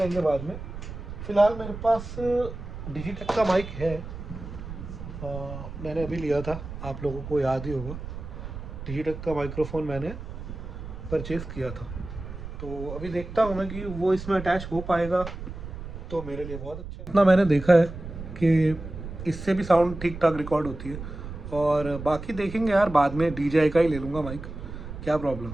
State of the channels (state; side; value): noise; right; rumble, 10 dB below the sound